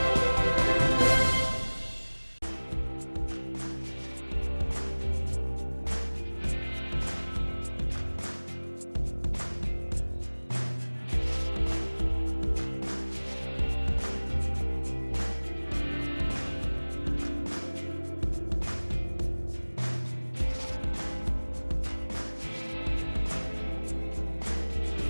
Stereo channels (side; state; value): both; inverted; correlation -1.00